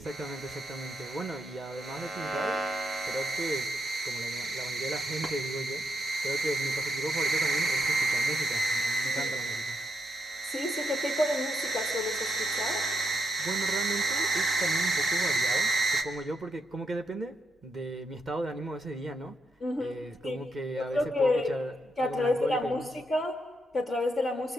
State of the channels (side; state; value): both; normal; correlation 0.80